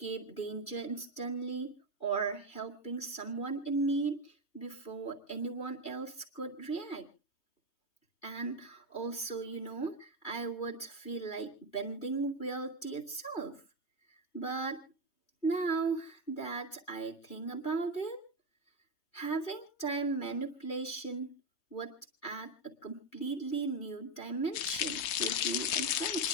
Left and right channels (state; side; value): late; right; 3.2 ms